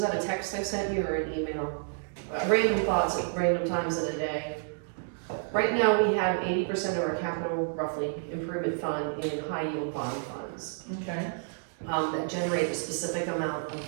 that a text I sent you or an email? Random thoughts at random times of the day. Right now, we have 80% of our capital, roughly, improvement fund in high yield bond funds. Okay. That generate a specific amount of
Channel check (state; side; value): silent; left; digital silence